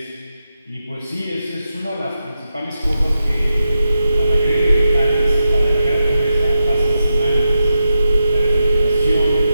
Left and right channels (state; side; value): inverted; both; correlation -0.88